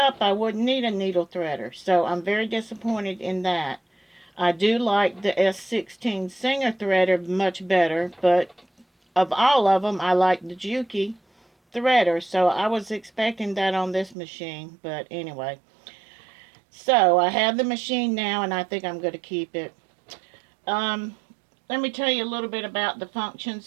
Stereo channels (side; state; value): left; drops out; at 14.2 s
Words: I wouldn't need a needle threader. So I'm very disappointed in that. I do like the S16 Singer threader much better, but of all of them, I like the JUKI threader. So I was expecting that on this machine, but anyway. So I have the machine now, and I think I'm going to keep it. Let me tell you a little bit about the functions